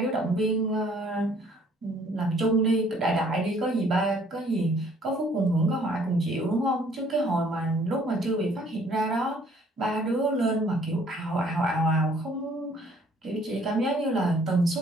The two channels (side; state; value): both; normal; correlation 0.60